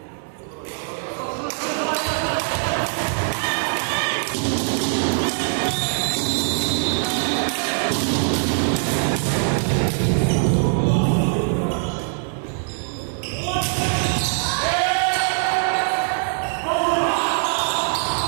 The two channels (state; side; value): silent; left; 57 dB below the other